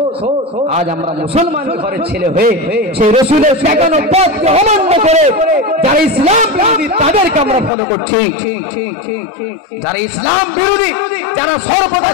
আজ আমরা মুসলমান ঘরের ছেলে হয়ে সেই রাসূলের দেখানো পথকে অমান্য করে যারা ইসলাম বিরোধী তাদেরকে আমরা ফলো করছি। যারা ইসলাম বিরোধী, যারা সর্বদা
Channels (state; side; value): drops out; right; at 7.7 s